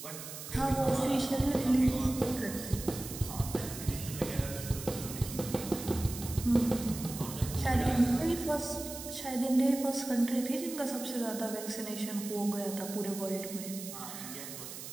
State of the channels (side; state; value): right; noise; hiss, 10 dB below the sound